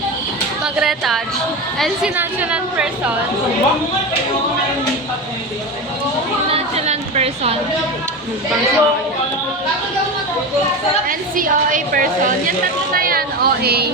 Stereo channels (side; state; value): both; normal; correlation 0.22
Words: mag-retouch. And si nonchalant person. Si nonchalant person. And si OA person. Yan tatlo na yan,